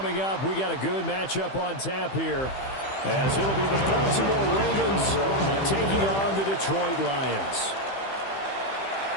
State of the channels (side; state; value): right; late; 15 ms